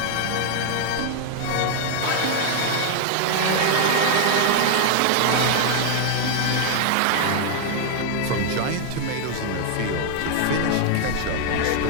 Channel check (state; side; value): different; both; correlation 0.00